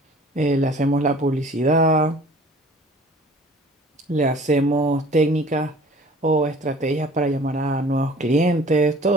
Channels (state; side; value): normal; both; correlation 0.49